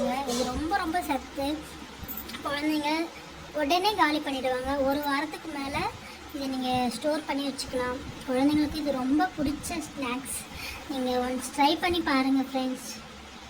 இது ரொம்ப ரொம்ப சத்து. குழந்தைங்க உடனே காலி பண்ணிவிடுவாங்க. 1 வாரத்துக்கு மேலே இதை நீங்கள் ஸ்டோர் பண்ணி வச்சுக்கலாம். குழந்தைங்களுக்கு இது ரொம்ப பிடிச்ச ஸ்நாக்ஸ். நீங்கள் ஒன்ஸ் ட்ரை பண்ணி பாருங்கள் ஃப்ரெண்ட்ஸ்.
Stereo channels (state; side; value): identical; both; correlation 1.00